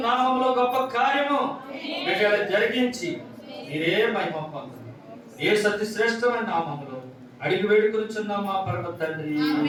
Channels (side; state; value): both; identical; correlation 1.00